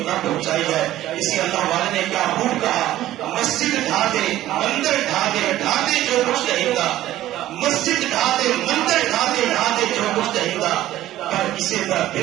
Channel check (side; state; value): left; quieter; 14.2 dB